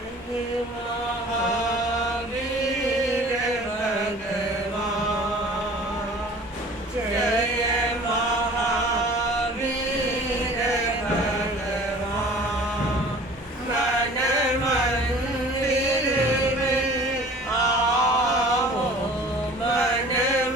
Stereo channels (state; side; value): normal; both; correlation 0.46